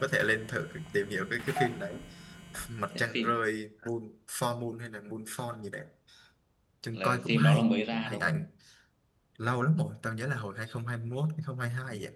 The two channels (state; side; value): identical; both; correlation 1.00